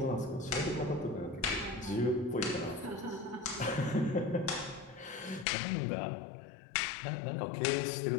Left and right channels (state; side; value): drops out; right; at 5.5 s